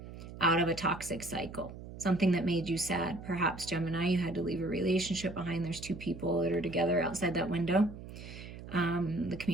out of a toxic cycle. Something that made you sad. Perhaps, Gemini, you had to leave a relationship behind. There's two people that are together outside that window. The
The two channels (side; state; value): right; noise; hum, 13 dB below the sound